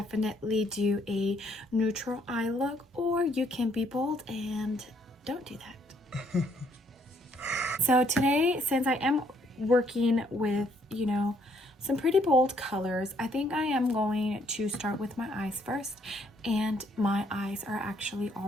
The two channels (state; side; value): normal; both; correlation 0.68